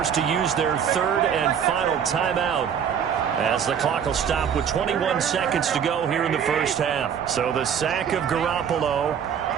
to use their third and final timeout, as the clock will stop with 21 seconds to go here in the first half. So the sack of Garoppolo.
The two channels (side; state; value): left; quieter; 8.0 dB